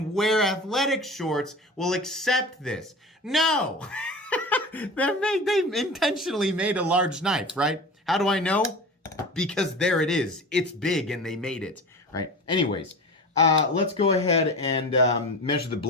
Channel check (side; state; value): both; normal; correlation 0.33